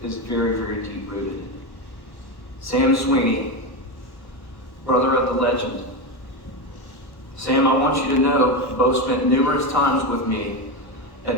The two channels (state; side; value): late; right; 1.1 ms